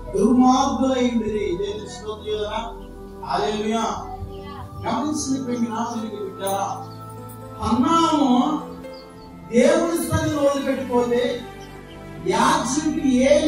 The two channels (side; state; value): both; identical; correlation 1.00